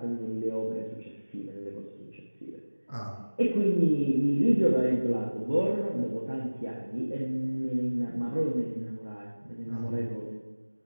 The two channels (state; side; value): inverted; both; correlation -1.00